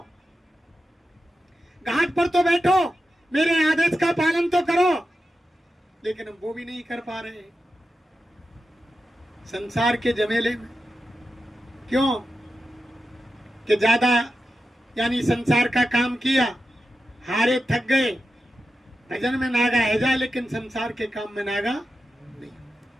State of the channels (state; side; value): normal; both; correlation 0.90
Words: घाट पर तो बैठो, मेरे आदेश का पालन तो करो। लेकिन हम वो भी नहीं कर पा रहे संसार के जमेले में। क्यों कि ज्यादा यानी संसार का काम किया, हारे थक गए, भजन में नागा है जाए लेकिन संसार के काम में नागा नहीं।